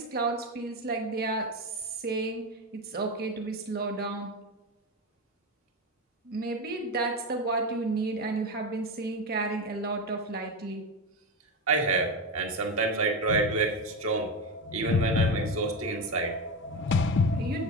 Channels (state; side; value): normal; both; correlation 0.17